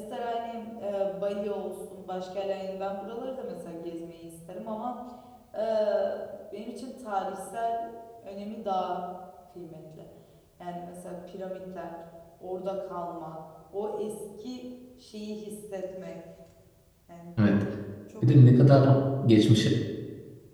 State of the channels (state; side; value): identical; both; correlation 1.00